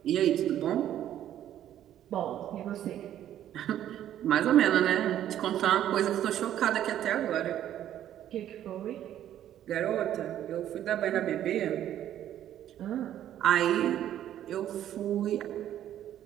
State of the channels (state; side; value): quieter; left; 11.4 dB